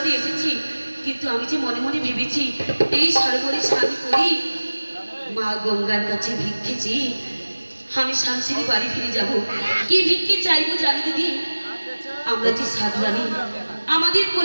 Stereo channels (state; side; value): inverted; both; correlation -1.00